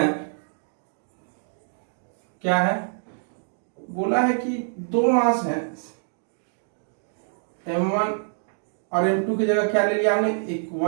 क्या है, बोला है कि दो मास है M1 और M2 की जगह क्या ले लिया हमने, एक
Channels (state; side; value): silent; left; digital silence